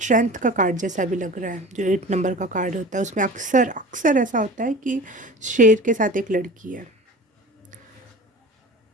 का कार्ड जैसा भी लग रहा है। जो 8 नंबर का कार्ड होता है उसमें अक्सर अक्सर ऐसा होता है कि शेर के साथ एक लड़की है,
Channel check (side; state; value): both; normal; correlation 0.37